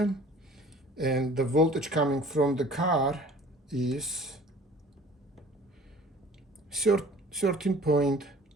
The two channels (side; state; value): both; normal; correlation 0.48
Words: And the voltage coming from the car is 13.4.